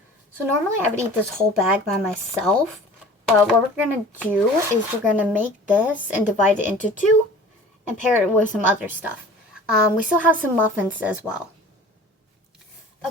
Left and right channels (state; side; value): normal; both; correlation 0.44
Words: So normally I would eat this whole bag by myself, but what we're going to do is we're going to make this and divide it into 2 and pair it with some other stuff. We still have some muffins as well.